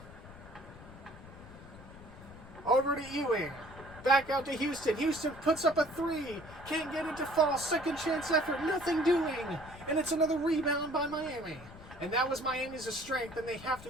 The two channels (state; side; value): noise; left; rumble, 17 dB below the sound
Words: Over to Ewing. Back out to Houston. Houston puts up a 3. Can't get it to fall. Second chance effort. Nothing doing. And it's another rebound by Miami. And that was Miami's strength, and they have